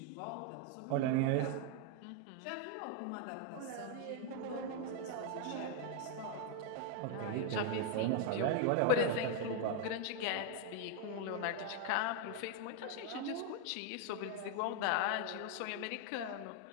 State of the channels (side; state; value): both; different; correlation 0.01